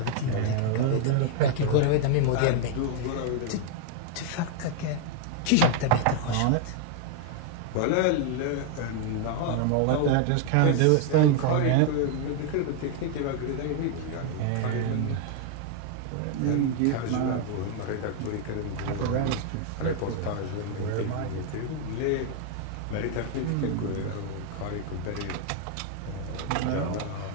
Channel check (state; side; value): different; both; correlation 0.00